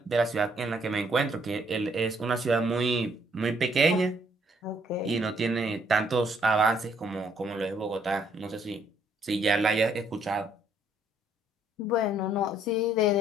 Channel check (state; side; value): normal; both; correlation 0.67